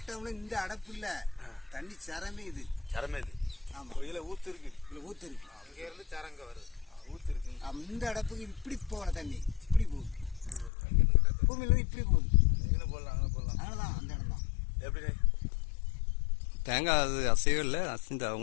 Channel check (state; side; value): drops out; right; at 10.7 s